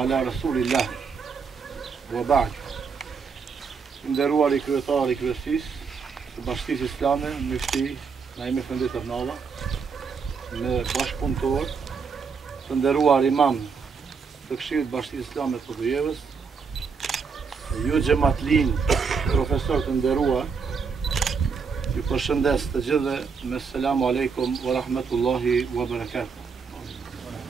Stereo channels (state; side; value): quieter; left; 5.5 dB